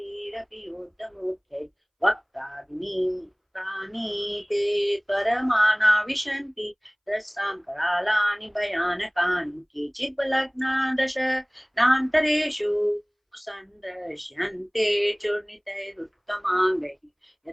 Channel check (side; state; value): both; identical; correlation 1.00